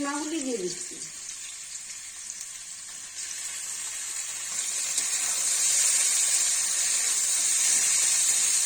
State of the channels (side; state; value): both; identical; correlation 1.00